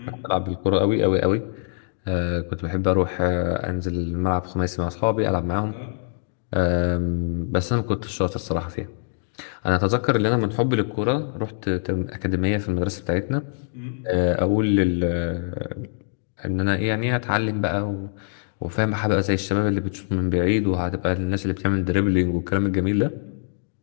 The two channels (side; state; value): right; silent; digital silence